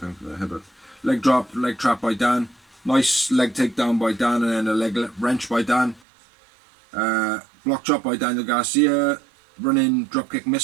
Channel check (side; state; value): left; drops out; at 6.0 s